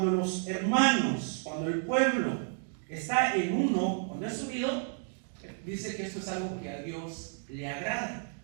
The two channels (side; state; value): left; silent; 57 dB below the other